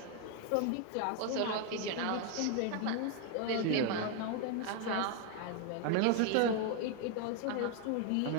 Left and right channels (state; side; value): different; both; correlation 0.01